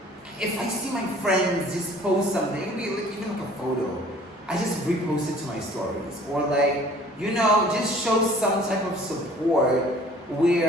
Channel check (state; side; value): normal; both; correlation 0.51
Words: if I see my friends just post something, it could be like, even like a photo, I just repost it to my stories. Or like, you know, just show some type of support